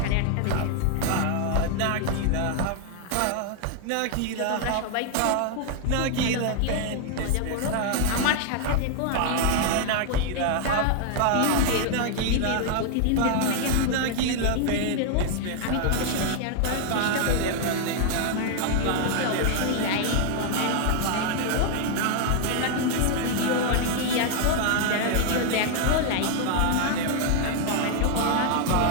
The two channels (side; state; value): both; different; correlation 0.00